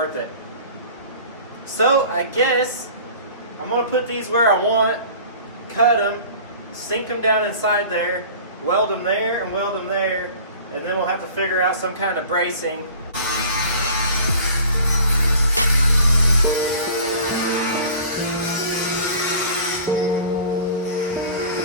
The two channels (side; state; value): both; inverted; correlation -0.44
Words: it. So I guess I'm going to put these where I want, cut them, sink them down inside there, weld them there and weld them there, and then we'll have to figure out some kind of bracing.